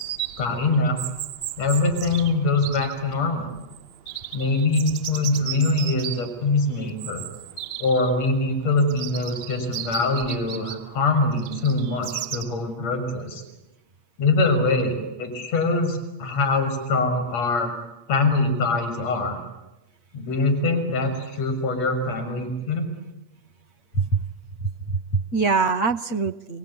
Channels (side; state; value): right; late; 8.5 ms